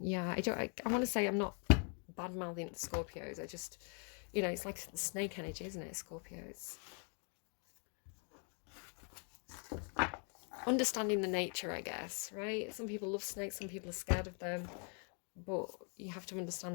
I want to say I'm not bad-mouthing the Scorpios. I just, you know, it's like snake energy, isn't it, Scorpios? Understanding the nature, I guess, right? Some people love snakes, some people are scared of them. But you have to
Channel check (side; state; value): right; quieter; 39.7 dB